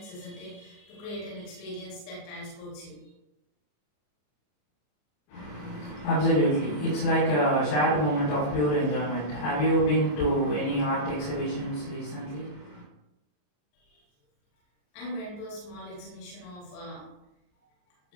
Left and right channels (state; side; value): late; right; 34 ms